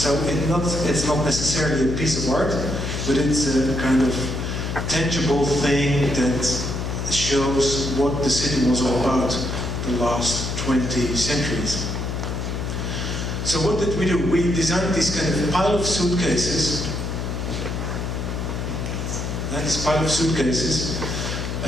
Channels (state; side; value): noise; left; hum, 3 dB below the sound